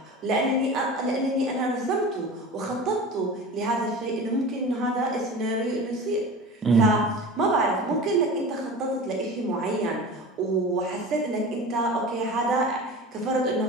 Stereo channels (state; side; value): normal; both; correlation 0.34